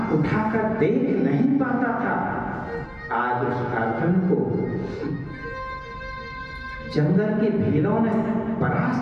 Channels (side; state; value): both; identical; correlation 1.00